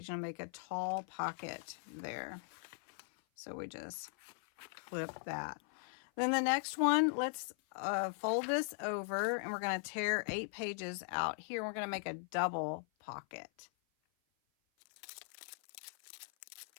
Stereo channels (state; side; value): silent; right; 51 dB below the other